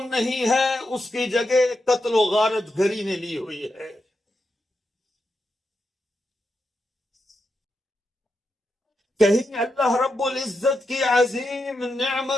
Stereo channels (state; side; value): normal; both; correlation 0.86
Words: نہیں ہے، اس کی جگہ قتل و غارت گری نے لی ہوئی ہے۔ کہیں اللہ رب العزت کی عظیم